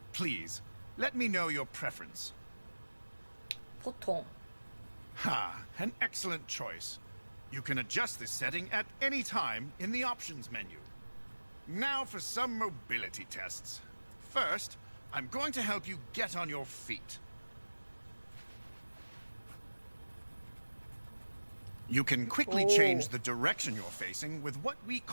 Please, let me know your preference. 보통. Ha, an excellent choice. You can adjust this setting at any time in the options menu. Now for some mobility tests. First, I'm going to help you get on your feet. You can quickly change the direction you're facing with what we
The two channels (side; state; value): both; inverted; correlation -1.00